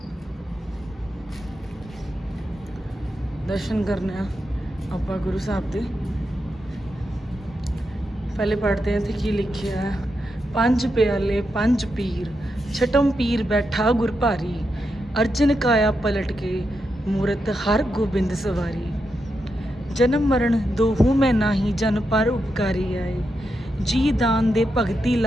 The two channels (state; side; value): normal; both; correlation 0.85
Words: ਦਰਸ਼ਨ ਕਰਨੇ ਆ ਆਪਾਂ ਗੁਰੂ ਸਾਹਿਬ ਦੇ। ਪਹਿਲੇ ਪੜ੍ਹਦੇ ਹਾਂ ਇੱਥੇ ਕੀ ਲਿਖਿਆ ਹੈ। 5 ਪਿਆਲੇ 5 ਪੀਰ, ਛਟਮ ਪੀਰ ਬੈਠਾ ਗੁਰ ਭਾਰੀ, ਅਰਜਨ ਕਾਇਆ ਪਲਟ ਕੇ ਮੂਰਤ ਹਰ ਗੋਬਿੰਦ ਸਵਾਰੀ, ਜਨਮ ਮਰਨ ਦੋਹੂ ਮੈਂ ਨਾਹੀ, ਜਨ ਪਰ ਉਪਕਾਰੀ ਆਏ, ਜੀ ਦਾਨ ਦੇ ਭਗਤੀ